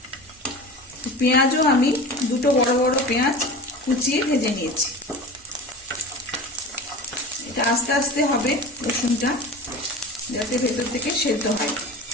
পেঁয়াজও আমি দুটো বড় বড় পেঁয়াজ কুচিয়ে ভেজে নিয়েছি। এটা আস্তে আস্তে হবে রসুনটা, যাতে ভেতর থেকে সেদ্ধ হয়।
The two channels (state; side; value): normal; both; correlation 0.34